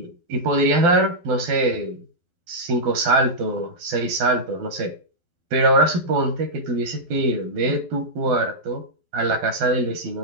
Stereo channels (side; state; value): left; late; 12 ms